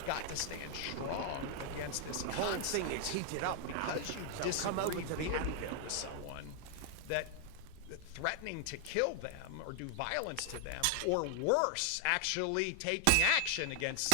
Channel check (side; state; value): both; different; correlation 0.00